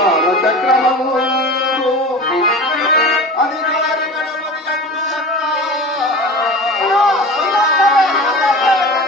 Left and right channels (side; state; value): both; normal; correlation 0.34